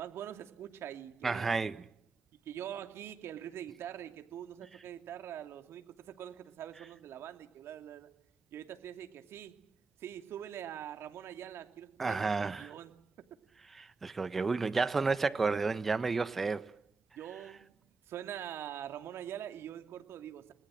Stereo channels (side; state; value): left; quieter; 4.6 dB